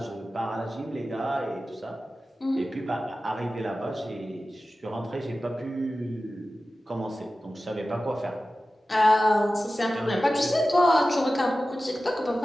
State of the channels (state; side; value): normal; both; correlation 0.95